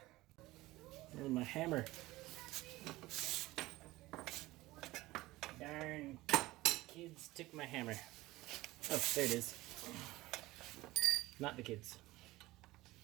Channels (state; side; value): quieter; left; 18.7 dB